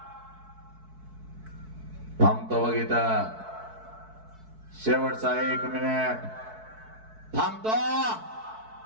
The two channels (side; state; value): left; late; 4.6 ms